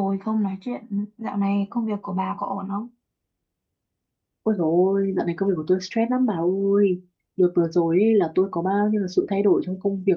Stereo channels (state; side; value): identical; both; correlation 1.00